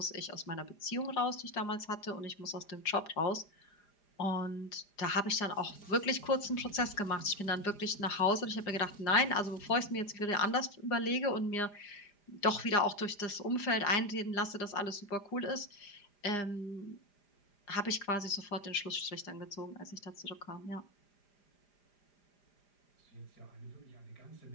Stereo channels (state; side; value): late; right; 4.9 ms